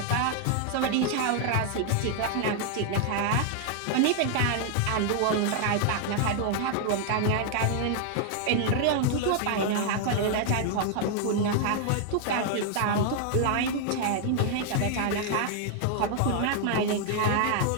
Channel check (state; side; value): different; both; correlation 0.00